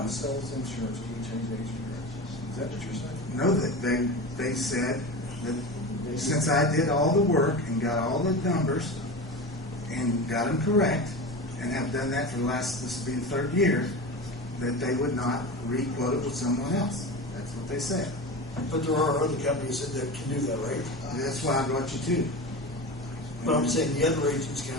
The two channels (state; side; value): normal; both; correlation 0.27